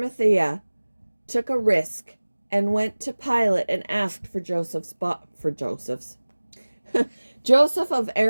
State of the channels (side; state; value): both; inverted; correlation -1.00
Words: took a risk and went to Pilate and asked for Joseph's. Joseph of